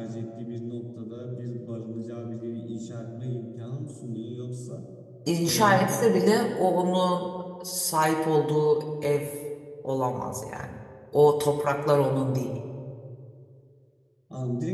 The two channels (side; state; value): both; identical; correlation 1.00